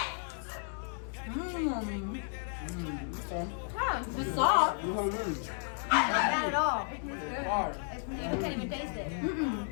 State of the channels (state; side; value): silent; right; 56 dB below the other